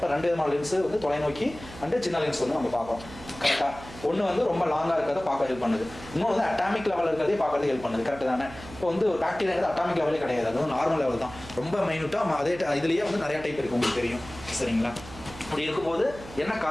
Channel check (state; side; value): noise; right; hum, 16 dB below the sound